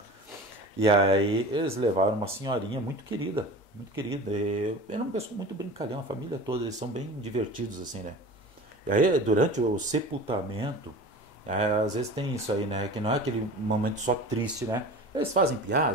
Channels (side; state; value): right; late; 2.1 ms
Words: E aí eles levaram uma senhorinha muito querida, muito querida. E era uma pessoa muito brincalhão, a família toda, eles são bem divertidos assim, né? E aí durante o sepultamento, às vezes tem isso aí, né? Que não é aquele momento só triste, né? Eles fazem